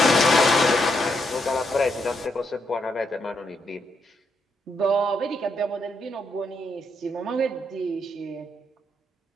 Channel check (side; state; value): both; normal; correlation 0.78